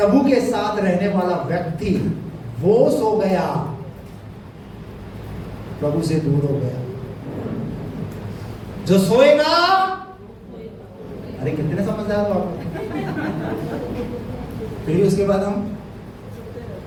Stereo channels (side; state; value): both; identical; correlation 1.00